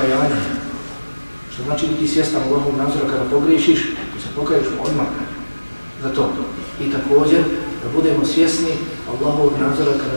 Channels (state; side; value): inverted; both; correlation -1.00